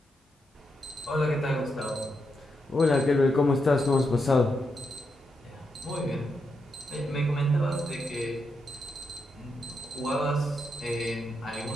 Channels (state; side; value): normal; both; correlation 0.83